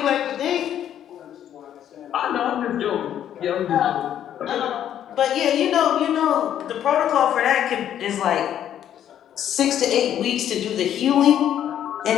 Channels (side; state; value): right; quieter; 10.4 dB